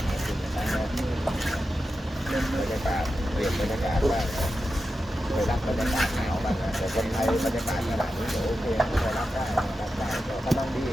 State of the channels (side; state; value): both; normal; correlation 0.90